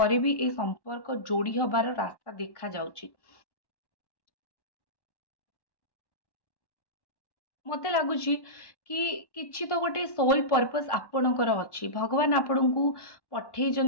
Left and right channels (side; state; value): right; late; 1.1 ms